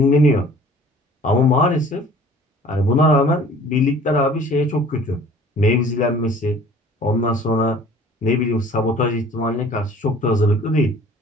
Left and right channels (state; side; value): normal; both; correlation 0.49